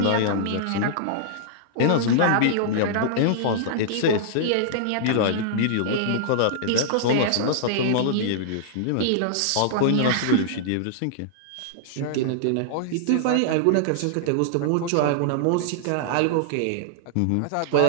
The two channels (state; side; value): different; both; correlation -0.01